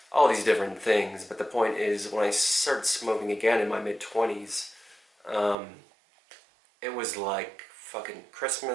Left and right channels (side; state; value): left; drops out; at 5.6 s